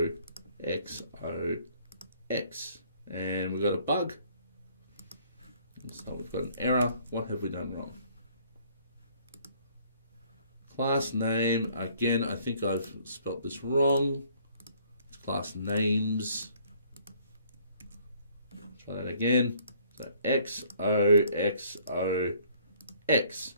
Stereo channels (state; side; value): inverted; both; correlation -0.60